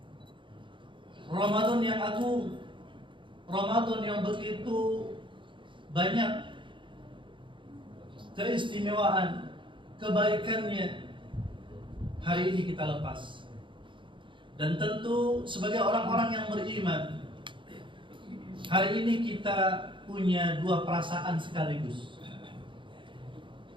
Ramadan yang agung, Ramadan yang begitu banyak keistimewaan, kebaikannya, hari ini kita lepas. Dan tentu sebagai orang-orang yang beriman, hari ini kita punya dua perasaan sekaligus.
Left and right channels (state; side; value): late; left; 0.24 ms